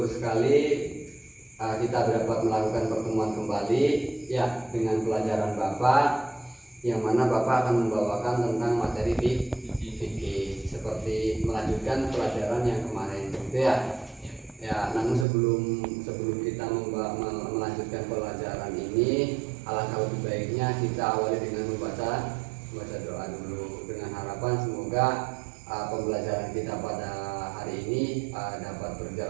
sekali kita dapat melakukan pertemuan kembali ya dengan pelajaran Bapak, yang mana Bapak akan membawakan tentang materi fikih seperti melanjutkan pelajaran yang kemarin gitu ya. Ya, namun sebelum kita melanjutkan pelajaran ini, alangkah lebih baiknya kita awali dengan membaca doa dulu, dengan harapan semoga pembelajaran kita pada hari ini dapat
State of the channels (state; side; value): drops out; left; at 15.2 s